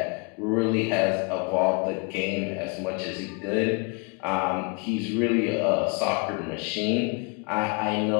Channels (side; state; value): right; quieter; 32.8 dB